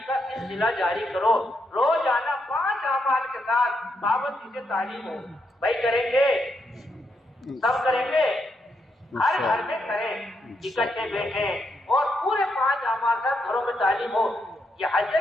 کا سلسلہ جاری کرو، روزانہ 5 اعمال کے ساتھ پابندی سے تعلیم ہو۔ بھائی کریں گے، سب کریں گے، ہر گھر میں کریں، اکٹھے بیٹھیں اور پورے 5 اعمال کا گھروں میں تعلیم ہو۔ یہ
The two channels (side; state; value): both; normal; correlation 0.80